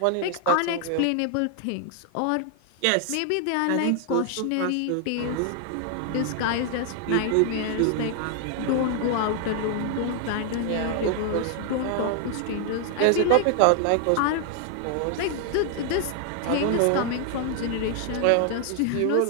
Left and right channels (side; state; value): both; different; correlation 0.00